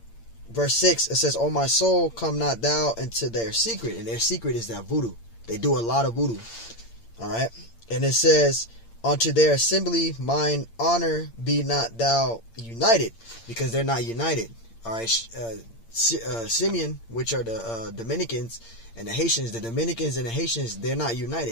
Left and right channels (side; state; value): right; late; 8.7 ms